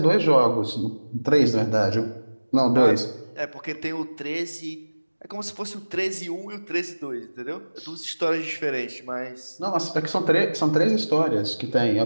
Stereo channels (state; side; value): inverted; both; correlation -1.00